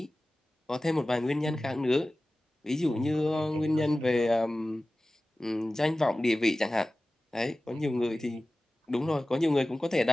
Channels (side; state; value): both; normal; correlation 0.97